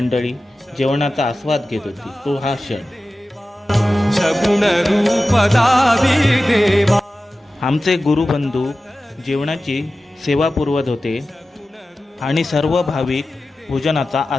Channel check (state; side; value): normal; both; correlation 0.95